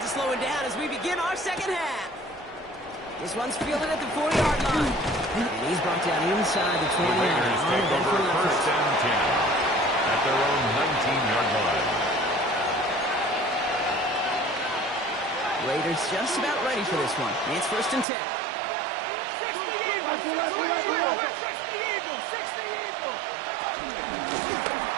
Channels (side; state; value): left; drops out; at 18.1 s